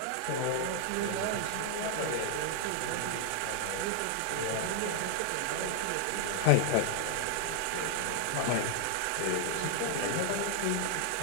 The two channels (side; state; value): both; different; correlation 0.00